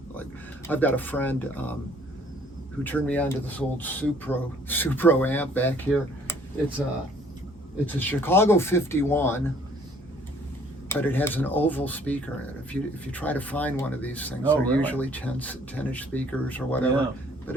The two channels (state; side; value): normal; both; correlation 0.59